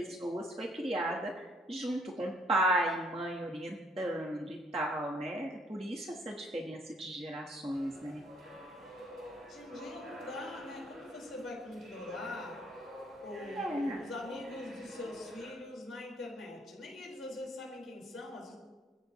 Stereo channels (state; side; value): normal; both; correlation 0.65